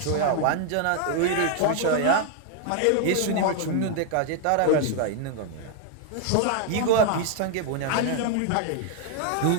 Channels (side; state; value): both; different; correlation 0.00